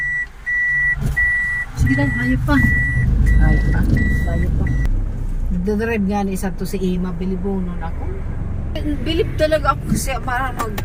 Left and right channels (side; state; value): both; identical; correlation 1.00